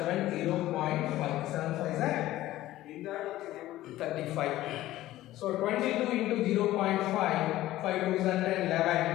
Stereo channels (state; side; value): quieter; right; 15.3 dB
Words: 7 5s are 35. So 22 into 0.5, 5 2s are 10,